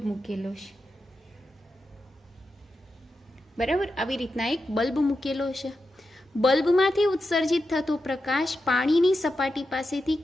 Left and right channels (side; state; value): both; normal; correlation 0.89